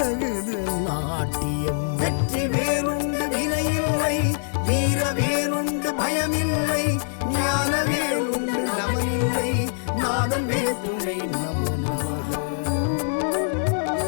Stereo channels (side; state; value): right; silent; digital silence